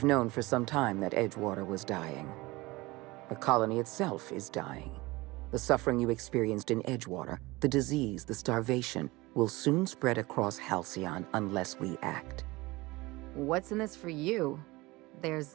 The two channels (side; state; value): left; quieter; 21.6 dB